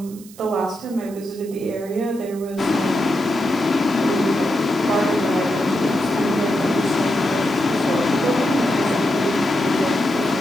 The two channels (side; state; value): right; noise; hiss, 21 dB below the sound